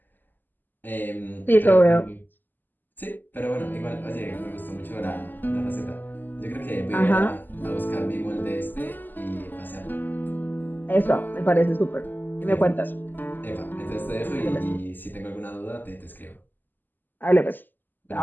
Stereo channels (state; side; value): late; right; 0.089 ms